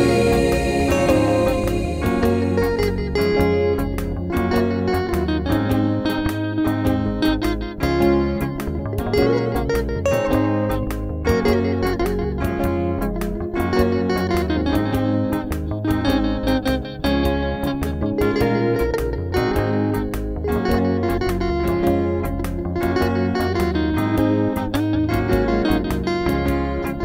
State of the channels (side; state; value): both; identical; correlation 1.00